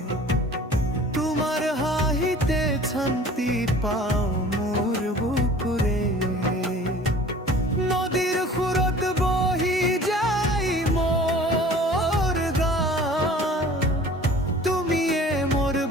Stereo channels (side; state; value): both; normal; correlation 0.47